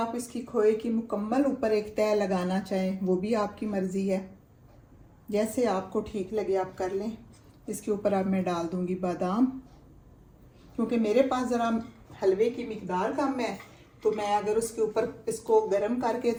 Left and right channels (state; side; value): identical; both; correlation 1.00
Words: इसकी खोए की मुकम्मल ऊपर एक तय लगाना चाहें वो भी आपकी मर्ज़ी है, जैसे आपको ठीक लगे आप कर लें। इसके ऊपर अब मैं डाल दूंगी बादाम, क्योंकि मेरे पास ज़रा हलवे की मिकदार कम है, तो मैं अगर उसके ऊपर इसको गर्म करके